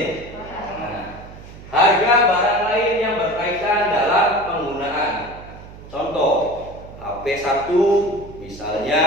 Nah, harga barang lain yang berkaitan dalam penggunaan. Contoh, HP 1 misalnya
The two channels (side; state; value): right; noise; hum, 17 dB below the sound